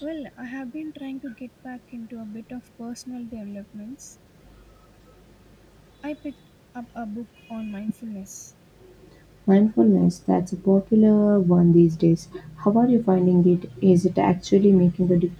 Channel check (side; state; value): both; identical; correlation 1.00